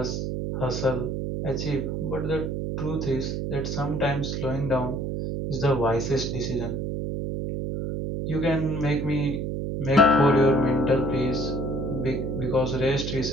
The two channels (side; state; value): right; noise; hum, 2 dB below the sound